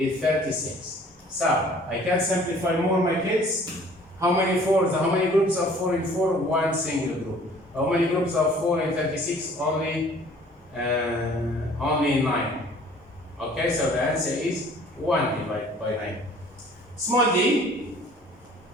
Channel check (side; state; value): both; normal; correlation 0.53